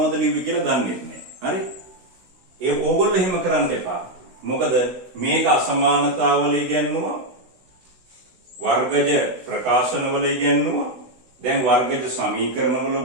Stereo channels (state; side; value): late; left; 16 ms